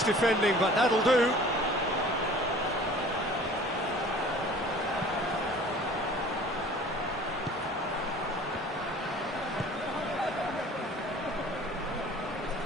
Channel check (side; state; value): both; normal; correlation 0.47